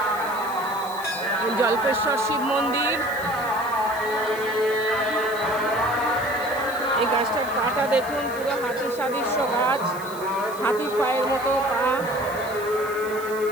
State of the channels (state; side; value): noise; left; hiss, 16 dB below the sound